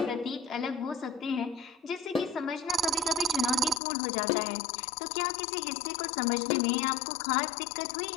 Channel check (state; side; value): drops out; right; at 3.8 s